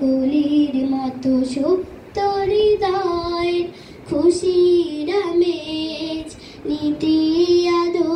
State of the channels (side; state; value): both; identical; correlation 1.00